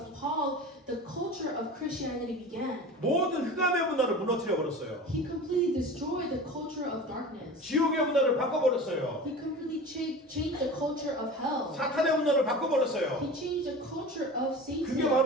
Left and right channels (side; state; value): both; normal; correlation 0.35